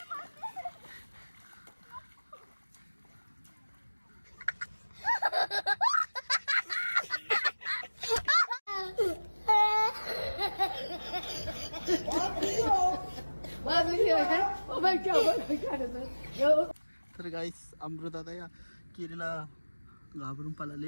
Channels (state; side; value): inverted; both; correlation -1.00